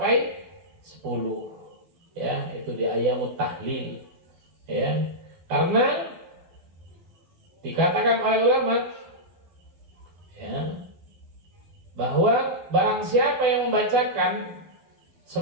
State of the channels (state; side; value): late; left; 12 ms